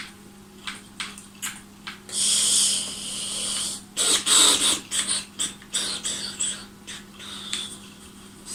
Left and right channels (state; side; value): identical; both; correlation 1.00